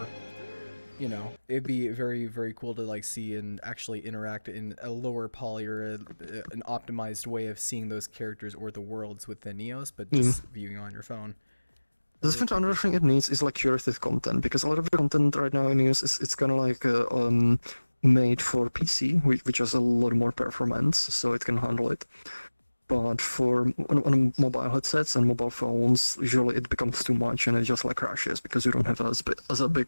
You know, it'd be very, very cool to like see and actually interact in a lower poly or an optimized way of seeing those characters or the worlds within Neos, but just viewing on your phone. The different another thing it needs is like curated content, because a lot of the content right now in Neos it's kind of like made for PC, which has a lot more performance, so it can handle it. But on mobile headsets and mobile phones, usually it becomes too much and it just like crashes because you don't have as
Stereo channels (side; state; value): both; inverted; correlation -1.00